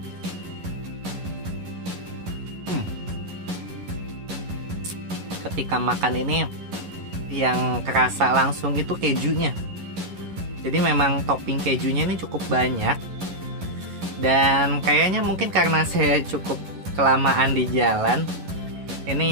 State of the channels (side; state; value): left; late; 11 ms